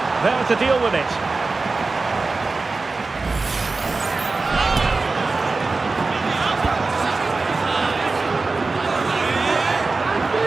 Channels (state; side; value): quieter; left; 3.8 dB